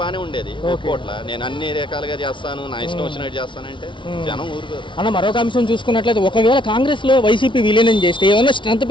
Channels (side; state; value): right; late; 0.24 ms